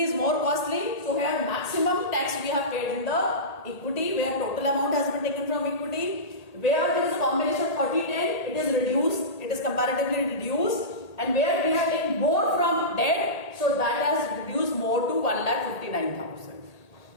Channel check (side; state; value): right; late; 1.8 ms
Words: is more costly. So here maximum tax we have paid in the equity, where total amount has been taken from equity. Where there is a combination of 30-10, it is reduced. It is comparatively reduced. And where we have taken more from debt, so that has reduced more to 1,59,000.